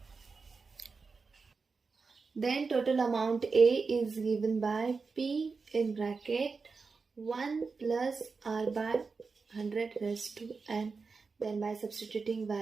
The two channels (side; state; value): left; quieter; 4.6 dB